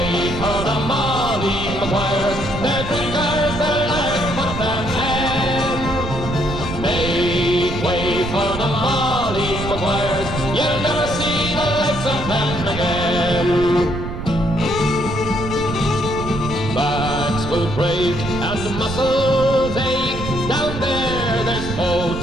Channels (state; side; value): noise; right; rumble, 7 dB below the sound